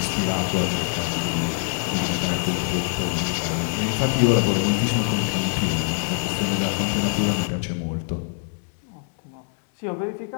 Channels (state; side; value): silent; right; digital silence